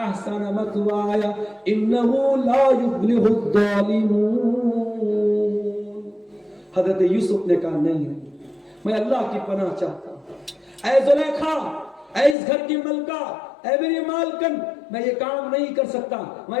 مثوایا انہ لا یفلح الظالمون. حضرت یوسف نے کہا نہیں میں اللہ کی پناہ چاہتا ہوں. اے زلیخا، اے اس گھر کی ملکہ، اے میری مالکن، میں یہ کام نہیں کر سکتا، میں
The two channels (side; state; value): right; drops out; at 12.4 s